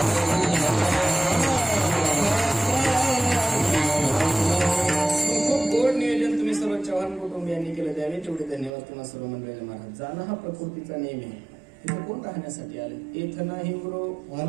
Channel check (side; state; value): left; drops out; at 8.7 s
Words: खूप गोड नियोजन तुम्ही सर्व चव्हाण कुटुंबियांनी केलं, द्यावे तेवढे धन्यवाद तुम्हाला सर्व मंडळीला महाराज. जाणं हा प्रकृतीचा नियम आहे. इथं कोण राहण्यासाठी आले? येथ नाही ब्रो